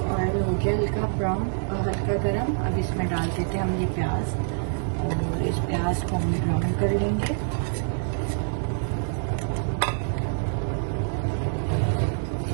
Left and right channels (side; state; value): left; silent; digital silence